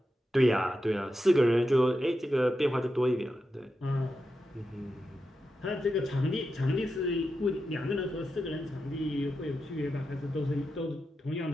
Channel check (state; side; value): normal; both; correlation 0.88